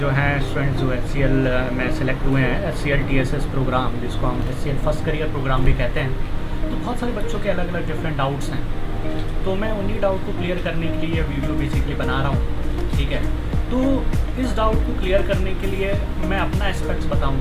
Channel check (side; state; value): both; identical; correlation 1.00